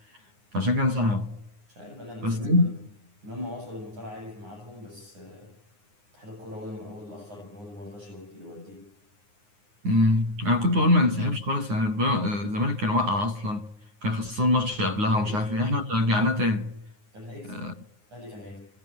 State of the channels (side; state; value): left; late; 9.6 ms